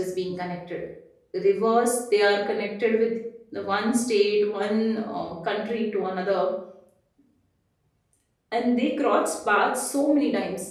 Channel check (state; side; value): identical; both; correlation 1.00